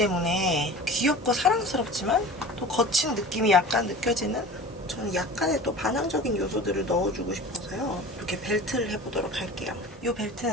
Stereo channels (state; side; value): normal; both; correlation 0.38